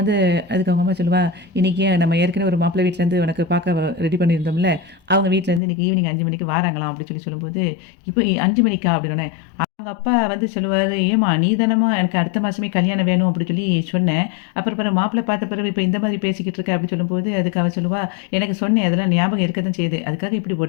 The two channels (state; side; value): drops out; right; at 5.6 s